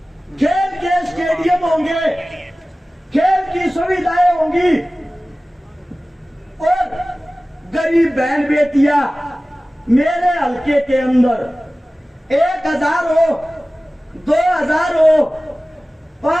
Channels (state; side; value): normal; both; correlation 0.97